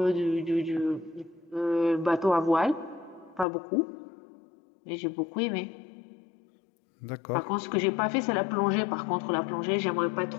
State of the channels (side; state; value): right; drops out; at 3.5 s